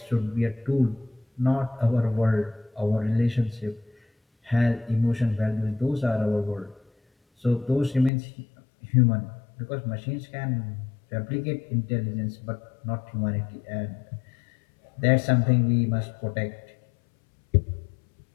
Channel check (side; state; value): right; drops out; at 8.1 s